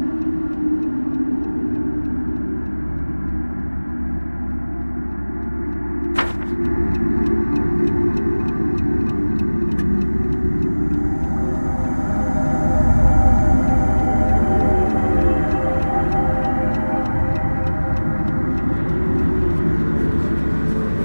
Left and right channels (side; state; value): both; inverted; correlation -1.00